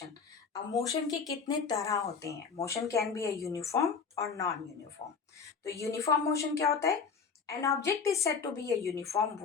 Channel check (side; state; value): right; quieter; 5.7 dB